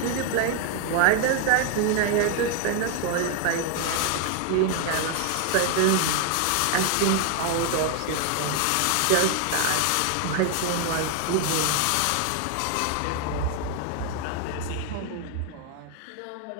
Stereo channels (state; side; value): different; both; correlation 0.00